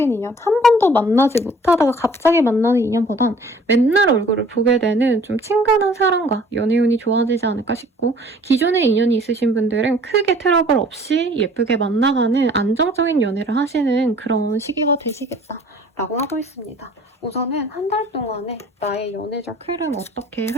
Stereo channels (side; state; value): both; normal; correlation 0.53